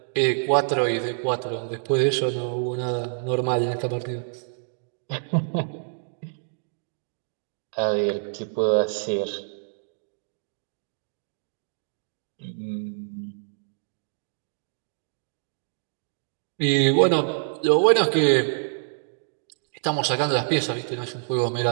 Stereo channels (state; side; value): silent; left; digital silence